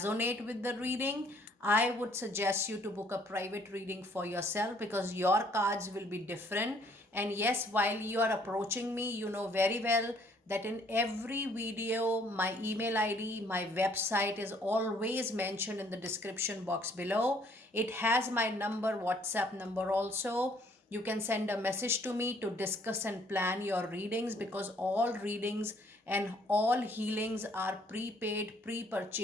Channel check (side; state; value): both; normal; correlation 0.62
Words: with the reading, I would suggest you to book a private reading for yourself because your cards will be different. And yes, while you are approaching me, you know very well that in every video, my email ID, my website is always mentioned in the description box below. It has my number, WhatsApp number also. You can send a message to me to discuss and plan your readings because all readings and all healings are prepaid,